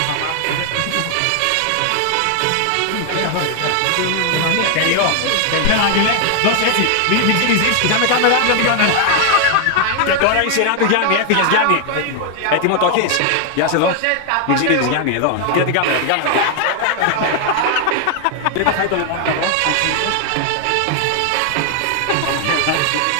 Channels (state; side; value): different; both; correlation 0.00